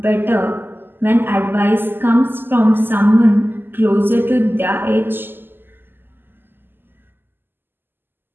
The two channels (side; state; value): left; late; 0.096 ms